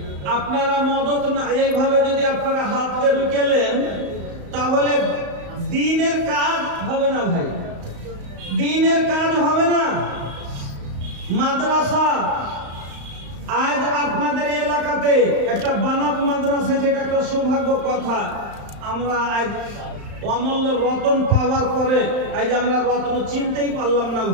আপনারা মদত না এইভাবে যদি আপনারা হাতকে রুকেলেন তাহলে দিনের কাজ হবে না ভাই দিনের কাজ হবে না মাদ্রাসা আজ আপনাদের এলাকাতে একটা বানাত মাদ্রাসা যেটা একটা সৌভাগ্য কথা আমরা আজ অমূল্য রতন পাওয়ার পরে আজ আমরা রত্ন চিনতেই পারলাম না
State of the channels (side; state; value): left; late; 35 ms